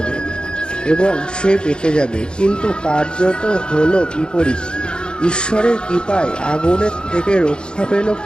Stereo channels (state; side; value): late; right; 0.050 ms